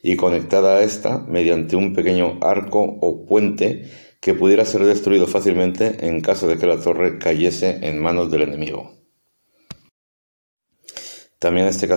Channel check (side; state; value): both; inverted; correlation -1.00